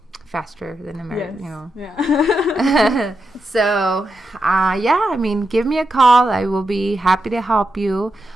faster than America, Yeah. So, I mean, give me a call. I will be happy to help you,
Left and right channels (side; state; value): both; normal; correlation 0.86